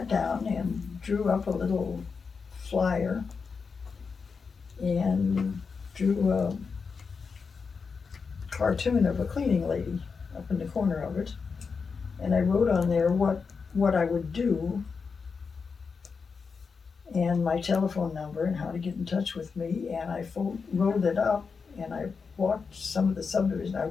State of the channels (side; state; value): right; quieter; 5.3 dB